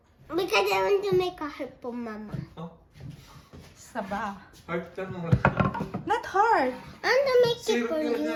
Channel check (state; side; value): identical; both; correlation 1.00